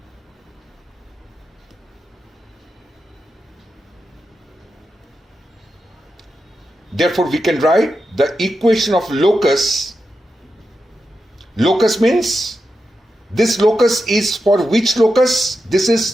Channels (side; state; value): both; normal; correlation 0.89